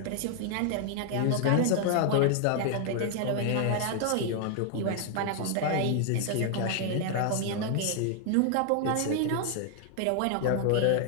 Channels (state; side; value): different; both; correlation 0.00